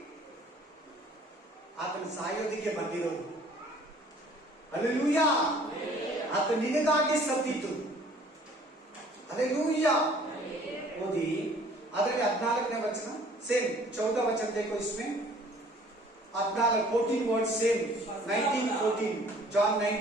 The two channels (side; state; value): both; normal; correlation 0.54